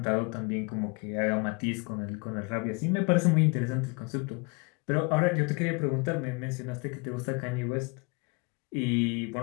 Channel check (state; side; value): quieter; right; 31.0 dB